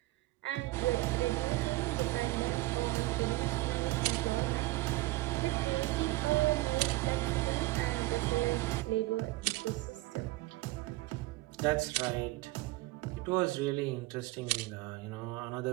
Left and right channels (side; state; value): left; quieter; 19.6 dB